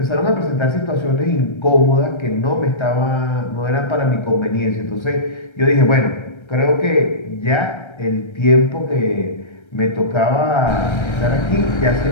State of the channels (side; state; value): right; late; 1.3 ms